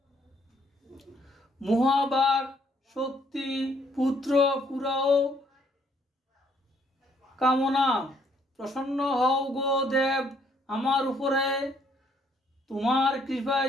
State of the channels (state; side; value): normal; both; correlation 0.67